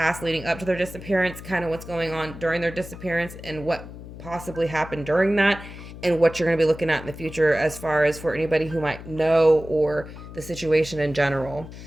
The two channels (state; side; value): noise; left; hum, 14 dB below the sound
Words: leading up to their disappearance, kind of what's going on during their disappearance and what possibly happened during that, and what you're going to be looking at in the future as far as for anybody who might know or the situation in general.